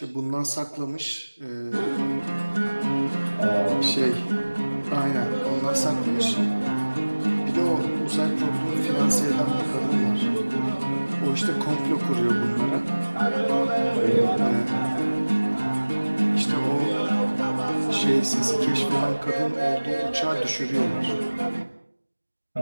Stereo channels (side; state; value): both; inverted; correlation -1.00